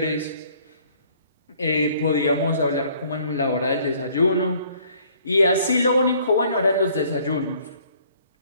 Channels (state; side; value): inverted; both; correlation -0.60